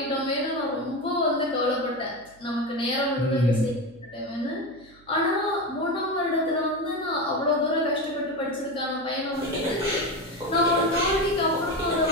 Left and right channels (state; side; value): noise; right; hum, 28 dB below the sound